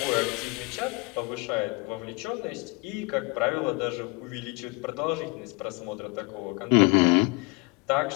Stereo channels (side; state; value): right; quieter; 27.5 dB